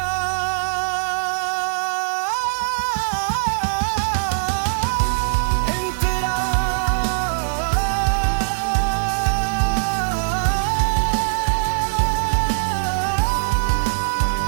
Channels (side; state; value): left; silent; digital silence